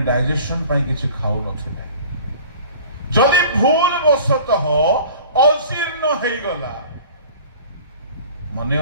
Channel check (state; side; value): inverted; both; correlation -0.44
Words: ଡାଇଜେସନ ପାଇଁ କିଛି ଖାଉନଥିଲେ ଯଦି ଭୁଲ ବଶତଃ ଅଜୀର୍ଣ୍ଣ ହେଇଗଲା ମନେ